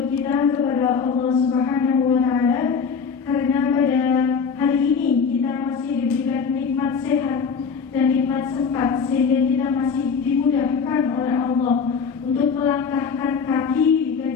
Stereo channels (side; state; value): right; quieter; 5.9 dB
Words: kita kepada Allah Subhanahu wa Ta'ala, karena pada hari ini kita masih diberikan nikmat sehat dan nikmat sempat, sehingga kita masih dimudahkan oleh Allah untuk melangkahkan kaki di